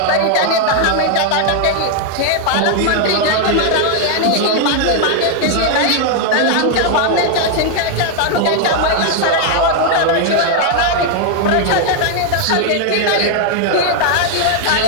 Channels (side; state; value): both; different; correlation 0.00